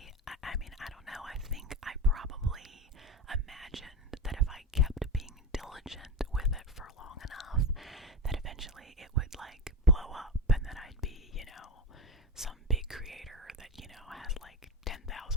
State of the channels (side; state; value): both; normal; correlation 0.22